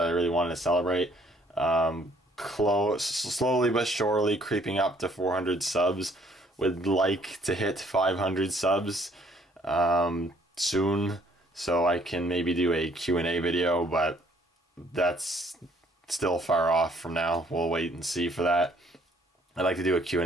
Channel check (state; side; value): normal; both; correlation 0.62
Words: I really wanted to celebrate. Slowly but surely creeping up to 400 subs. Would like to hit 500 subs soon, so I can maybe do a Q&A video, but that's still far off from now. We'll wait and see for that. I'd like to do a